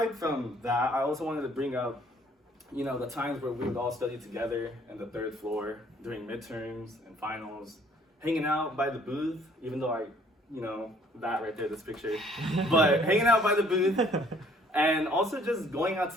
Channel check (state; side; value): normal; both; correlation 0.60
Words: from that, I also wanted to bring up, the times where we would all study together in the 3rd floor during midterms and finals, hanging out by the booth, even though that right there, this picture, but hanging out by the booth and also just going out